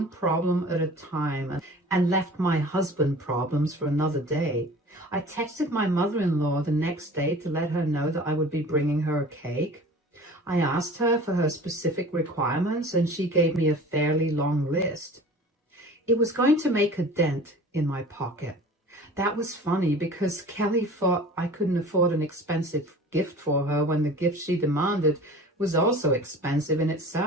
problem at a time and left my husband problems for another day. I texted my mother-in-law the next day to let her know that I would be bringing her a cake. I asked her for her specific requirements and she gave me a fairly long list. It was going to make a dent in my pocket. That was funny because Kelly thought I couldn't afford an expensive gift for her when the gift she demanded was also expensive in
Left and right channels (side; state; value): both; normal; correlation 0.42